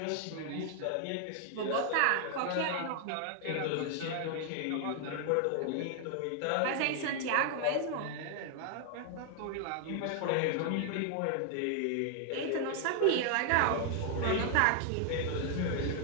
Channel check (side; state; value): both; different; correlation 0.00